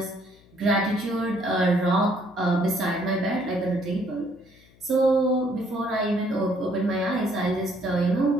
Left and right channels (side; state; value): left; noise; hum, 28 dB below the sound